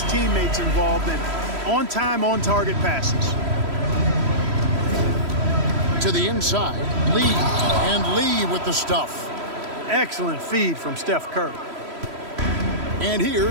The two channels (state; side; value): late; left; 3.1 ms